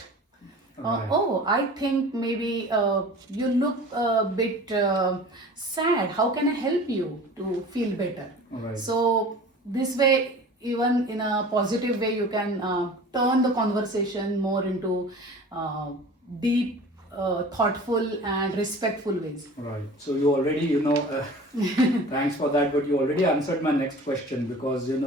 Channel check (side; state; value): both; normal; correlation 0.41